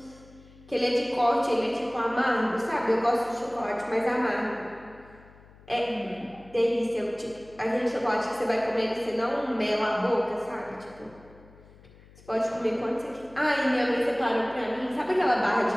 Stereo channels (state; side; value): noise; left; hum, 24 dB below the sound